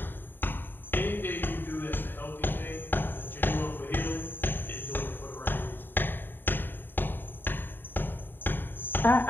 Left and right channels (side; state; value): right; late; 0.095 ms